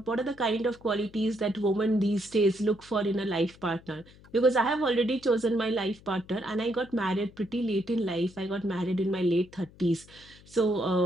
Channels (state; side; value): noise; left; hum, 24 dB below the sound